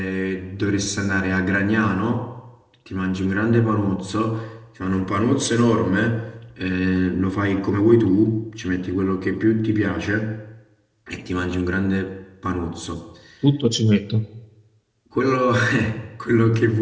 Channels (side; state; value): both; identical; correlation 1.00